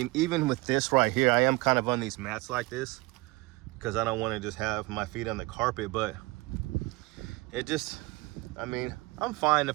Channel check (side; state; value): left; quieter; 22.9 dB